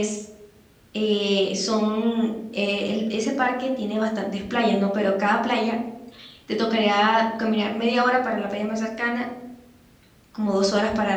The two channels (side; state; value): both; identical; correlation 1.00